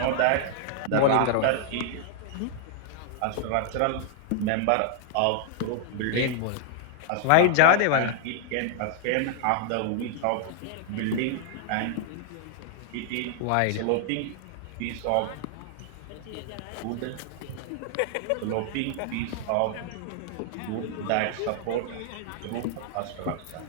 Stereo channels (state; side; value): different; both; correlation 0.00